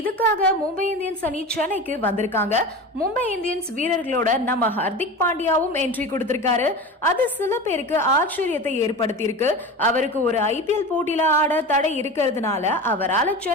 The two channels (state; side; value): normal; both; correlation 0.30